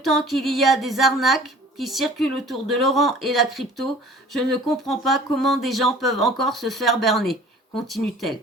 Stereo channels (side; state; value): both; normal; correlation 0.47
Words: qu'il y a des arnaques qui circulent autour de Laurent et la crypto, je ne comprends pas comment des gens peuvent encore se faire berner, continue-t-elle.